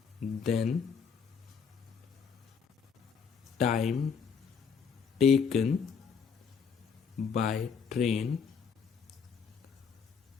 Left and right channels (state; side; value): quieter; right; 6.2 dB